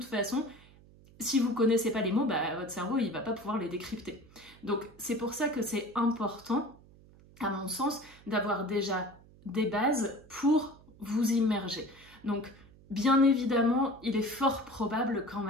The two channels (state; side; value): noise; right; hum, 24 dB below the sound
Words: façon, si vous ne connaissez pas les mots, votre cerveau, il ne va pas pouvoir les décrypter. Donc c'est pour ça que c'est important, à mon sens, d'avoir déjà des bases pour vous immerger. Donc, bien évidemment, il est fort probable quand